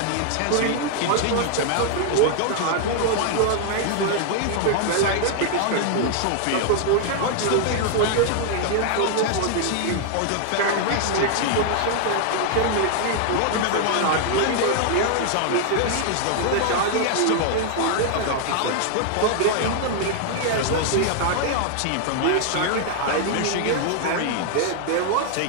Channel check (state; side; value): different; both; correlation 0.00